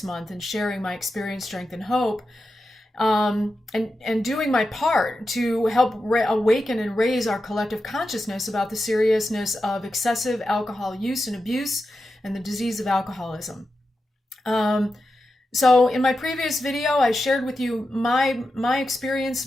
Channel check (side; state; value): both; normal; correlation 0.90